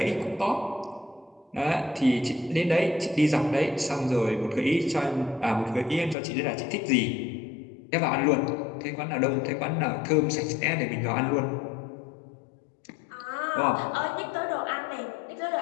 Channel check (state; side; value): drops out; right; at 6.2 s